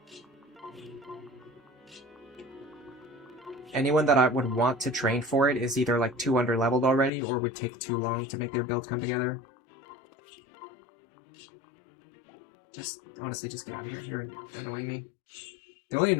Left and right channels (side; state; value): right; drops out; at 7.1 s